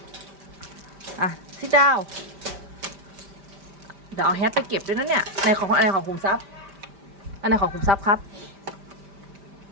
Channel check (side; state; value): left; late; 5.1 ms